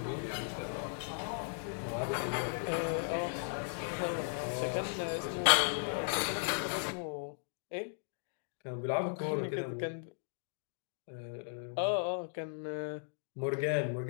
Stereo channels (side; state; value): right; silent; digital silence